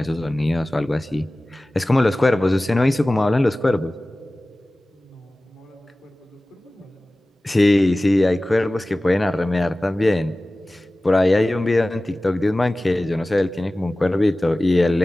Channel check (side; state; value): both; normal; correlation 0.97